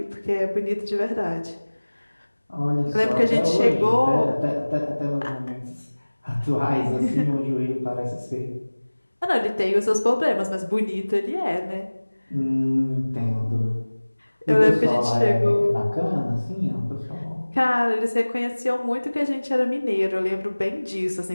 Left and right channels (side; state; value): both; inverted; correlation -1.00